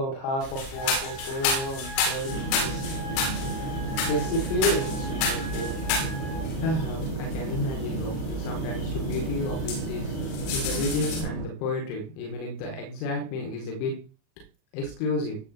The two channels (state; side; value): late; right; 37 ms